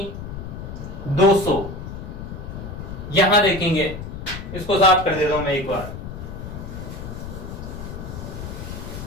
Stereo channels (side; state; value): left; noise; rumble, 9 dB below the sound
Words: 200। यहां देखेंगे, इसको साफ कर देता हूं मैं एक बार।